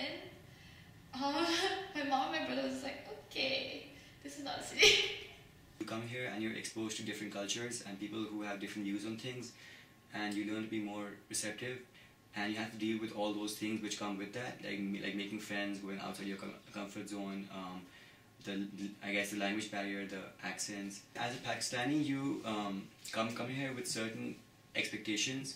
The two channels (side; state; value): both; identical; correlation 1.00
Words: my mom and my brother was like, okay, this is not a city. You come here and you're exposed to different cultures and people who have different views on things, and you learn to be more receptive, and you have to deal with all those things which come with that, like making friends, going outside your comfort zone, I guess the language barrier, the accents. As a Pakistani, you come here with certain